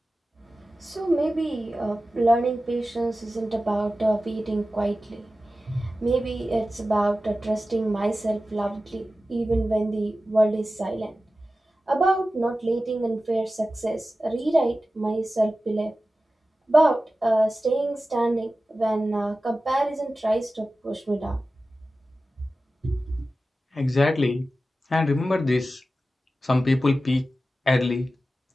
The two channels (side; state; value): both; normal; correlation 0.94